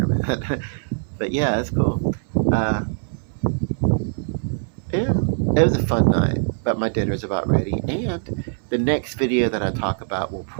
man. But yeah, it's cool. Uh, yeah, it was a fun night. But my dinner's about ready, and the next video that I talk about will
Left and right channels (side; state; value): left; silent; 64 dB below the other